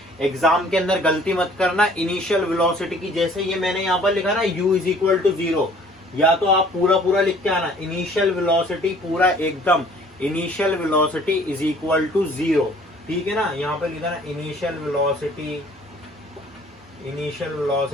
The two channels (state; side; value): normal; both; correlation 0.55